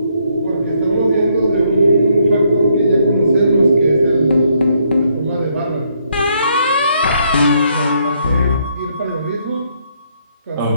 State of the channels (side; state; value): both; inverted; correlation -0.72